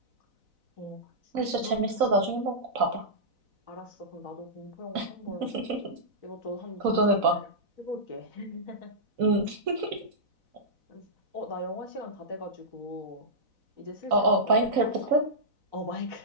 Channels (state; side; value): late; left; 4.0 ms